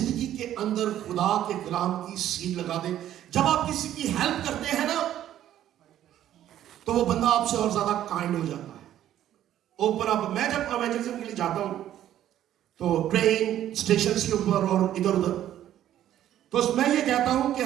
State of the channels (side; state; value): left; quieter; 11.9 dB